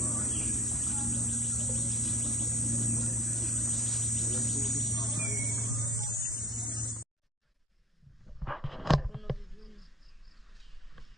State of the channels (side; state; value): both; normal; correlation 0.48